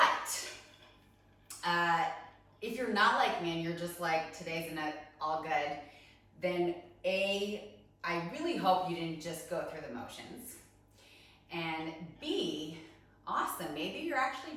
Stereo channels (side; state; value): both; identical; correlation 1.00